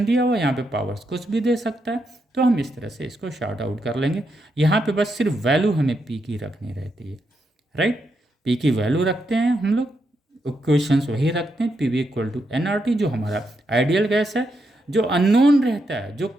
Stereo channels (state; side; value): normal; both; correlation 0.82